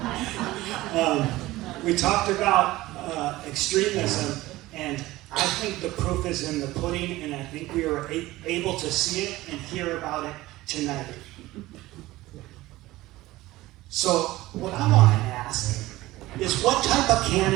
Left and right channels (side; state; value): left; quieter; 17.8 dB